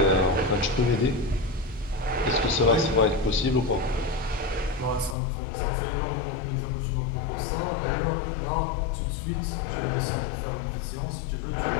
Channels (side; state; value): right; drops out; at 5.2 s